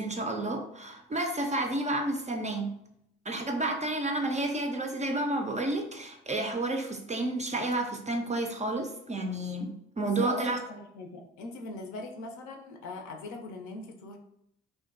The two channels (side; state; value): both; normal; correlation 0.34